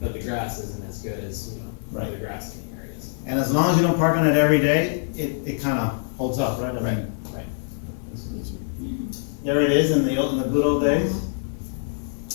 but the grass isn't as good as, Right. other grassing areas. And as long as you don't park on it every day, it kinda holds up, right? I mean, Right. there it is in the good old days.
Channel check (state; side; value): silent; right; digital silence